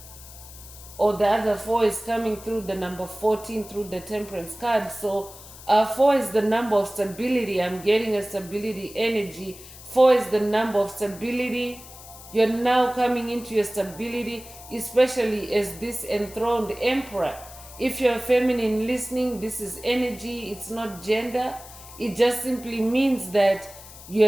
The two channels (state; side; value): noise; left; hiss, 17 dB below the sound